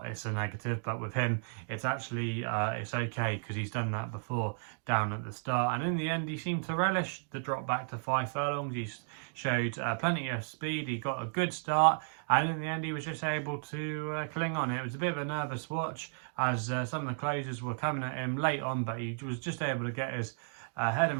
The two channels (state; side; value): silent; left; digital silence